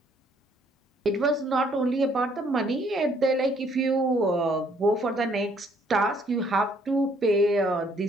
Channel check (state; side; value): normal; both; correlation 0.65